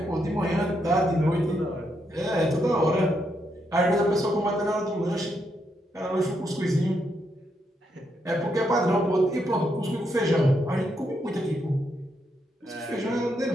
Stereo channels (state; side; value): normal; both; correlation 0.79